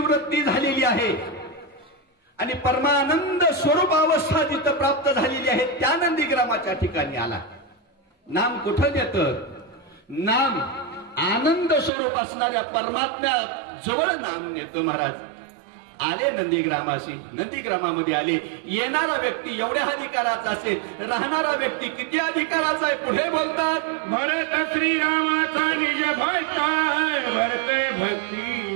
झालेली आहे आणि परमानंद स्वरूप अवस्था जिथं प्राप्त झालेली आहे, त्या नंदीग्रामाच्या ठिकाणी आला. नाम कुठं देतं? नाम आनंद स्वरूप असणाऱ्या परमात्म्या जवळ नाम नेतं महाराज. आले नंदीग्रामाशी. नंदीग्रामामध्ये आले. येणारा व्यक्ती एवढ्या अधिकाराचा असेल, राहणारा व्यक्ती किती अधिकाराचा आहे? पुढे बोलतात, भरत श्रीरामाचा निज भक्त, भरते भक्ती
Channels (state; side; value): drops out; left; at 11.9 s